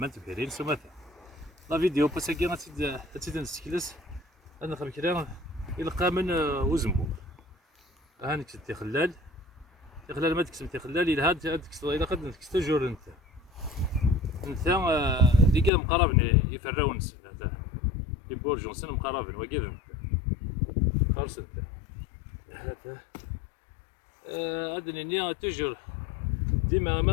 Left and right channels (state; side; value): drops out; right; at 15.7 s